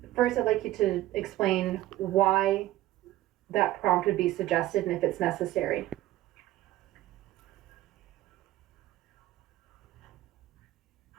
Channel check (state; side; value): quieter; left; 15.5 dB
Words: first, I'd like you to explain why that prompt would be suggested and if it's necessary.